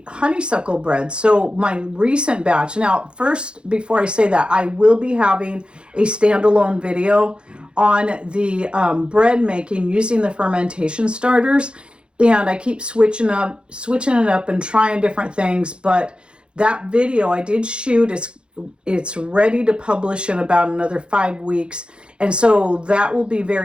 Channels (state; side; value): late; left; 0.054 ms